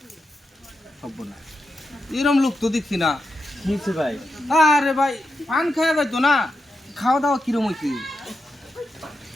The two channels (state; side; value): normal; both; correlation 0.87